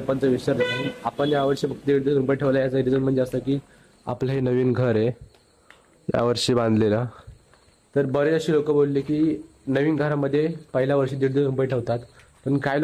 विसर्जन. आपण यावर्षी फक्त 1.5 रुपये ठेवला. याचं रिझन म्हणजे असं की आपलं हे नवीन घर आहे यावर्षी बांधलेलं. तर बरेच असे लोक बोलले की नवीन घरामध्ये पहिल्या वर्षी 1.5 रुपये ठेवतात, पण काही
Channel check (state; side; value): identical; both; correlation 1.00